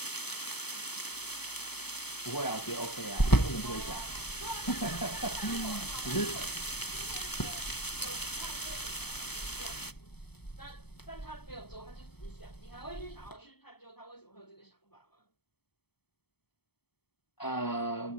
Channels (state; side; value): late; right; 0.97 ms